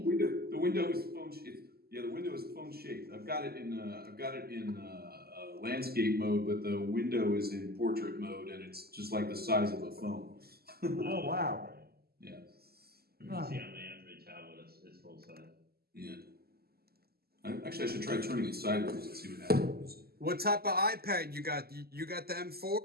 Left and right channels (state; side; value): late; left; 0.45 ms